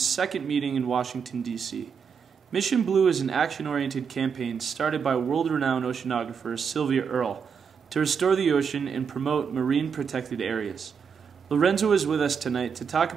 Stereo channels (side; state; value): left; quieter; 6.5 dB